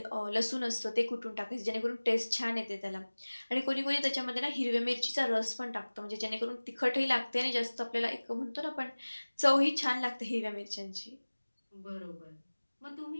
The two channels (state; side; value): inverted; both; correlation -1.00